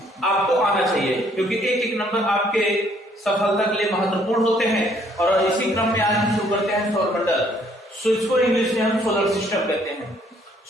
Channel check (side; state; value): both; normal; correlation 0.64